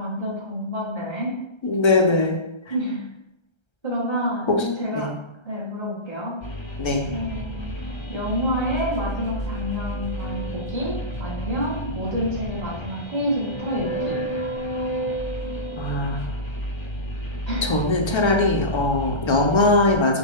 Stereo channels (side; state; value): right; late; 1.3 ms